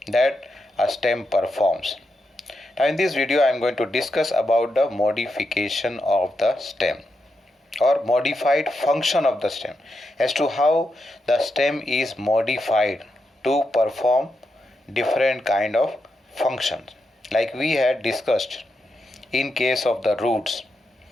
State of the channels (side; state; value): both; normal; correlation 0.85